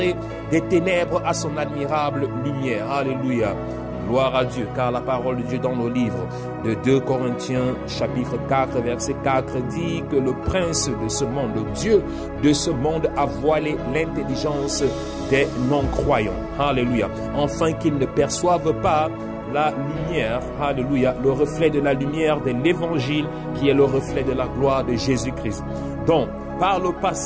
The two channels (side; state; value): both; identical; correlation 1.00